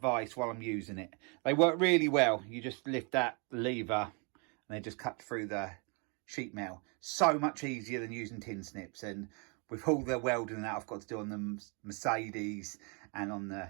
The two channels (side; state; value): left; quieter; 35.0 dB